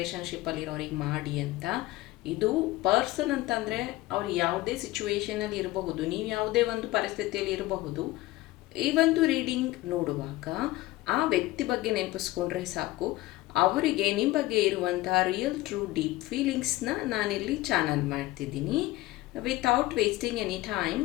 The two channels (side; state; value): right; quieter; 18.1 dB